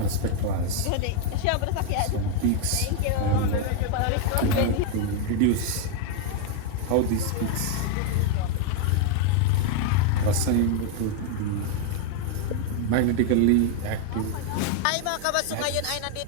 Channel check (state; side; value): different; both; correlation 0.01